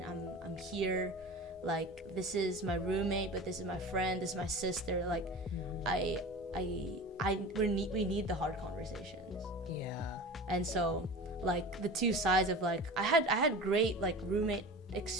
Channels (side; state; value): both; normal; correlation 0.34